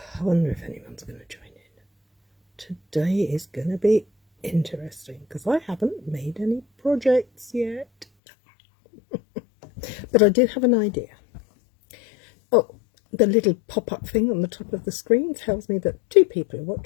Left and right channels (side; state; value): right; drops out; at 8.1 s